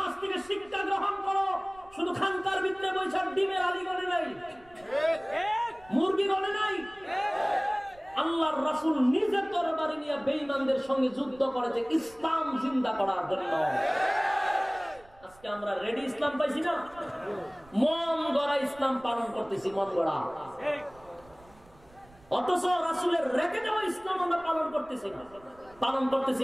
থেকে শিক্ষা গ্রহণ করো। শুধু খানকার ভিতরে বৈশাখ ডিমের আলী গড়ে নাই, মুরগি গড়ে নাই। আল্লাহর রাসূল নিজের তরবারি নিয়ে বেঈমানদের সঙ্গে যুদ্ধ করেছে ইসলাম জিন্দা করার জন্য। আজকে আমরা রেডি ইসলাম পাইছি না, মন গড়া ইসলাম পালন করতেছি, মন গড়া। অথচ রাসূলের রেখে দেওয়া ইসলাম আমরা পালন করতেছি না, পালন করতেছি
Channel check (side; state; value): right; noise; rumble, 26 dB below the sound